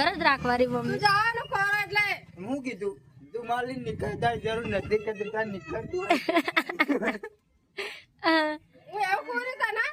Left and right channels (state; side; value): identical; both; correlation 1.00